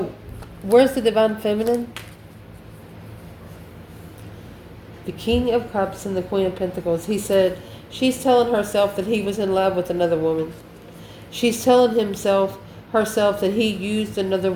where's the divine feminine? The King of Cups and the Queen of Pentacles. He said, she's telling herself that he was in love with another woman. She's telling herself that he used another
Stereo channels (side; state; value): both; identical; correlation 1.00